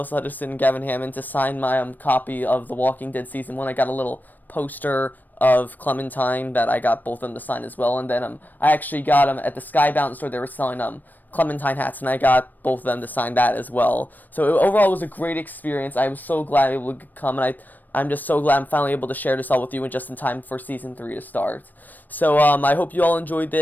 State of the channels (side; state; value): right; late; 0.088 ms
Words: Hutchison and Gavin Hammon to sign my copy of The Walking Dead Season 1. I got a little poster of Clementine that I got both of them to sign as well. And then I actually got them at the Skybound store. They were selling Clementine hats, and I got both of them to sign that as well. So overall, it was a great experience. I was so glad I was able to come, and I'm just so glad I'm finally able to share this all with you and just in time for Season 3 to start. So I hope you all enjoyed